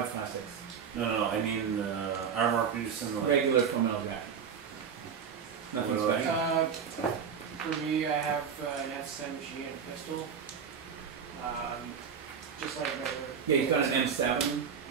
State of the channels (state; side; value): quieter; left; 6.9 dB